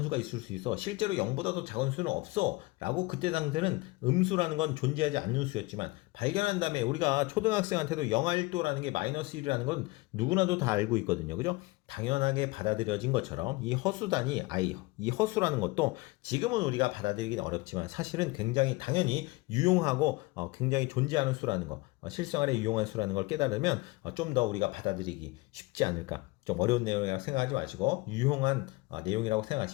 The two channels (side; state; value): right; quieter; 22.9 dB